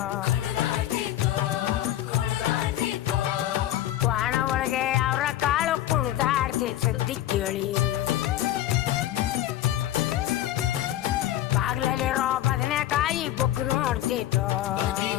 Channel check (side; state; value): right; quieter; 13.2 dB